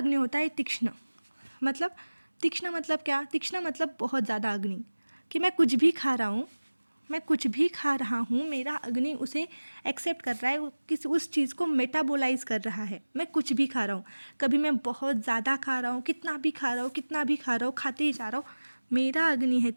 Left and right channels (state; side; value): inverted; both; correlation -1.00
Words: होता है तीक्ष्ण। मतलब तीक्ष्ण मतलब क्या? तीक्ष्ण मतलब बहुत ज़्यादा अग्नि, कि मैं कुछ भी खा रहा हूँ, मैं कुछ भी खा रहा हूँ, मेरा अग्नि उसे एक्सेप्ट कर रहा है, किसी उस चीज़ को मेटाबोलाइज कर रहा है। मैं कुछ भी खा रहा हूँ, कभी मैं बहुत ज़्यादा खा रहा हूँ, कितना भी खा रहा हूँ, कितना भी खा रहा हूँ, खाते ही जा रहा हूँ, मेरा अग्नि है